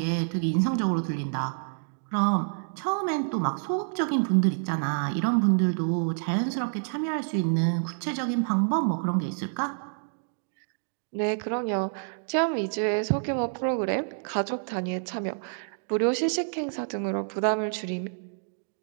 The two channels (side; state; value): left; silent; digital silence